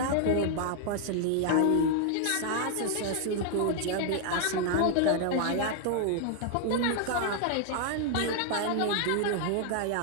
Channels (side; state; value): both; different; correlation 0.00